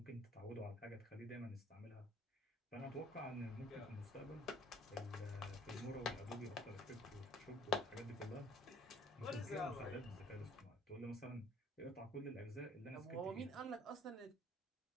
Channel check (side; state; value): both; normal; correlation 0.56